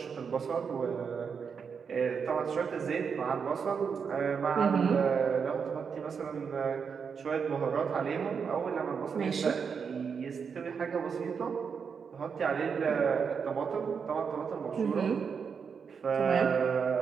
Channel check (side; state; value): left; quieter; 6.2 dB